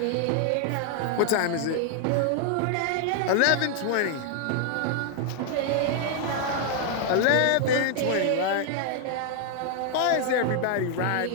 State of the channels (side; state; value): both; different; correlation 0.00